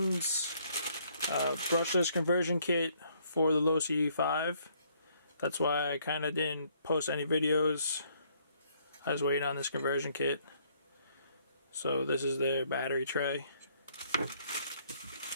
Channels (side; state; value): both; inverted; correlation -0.66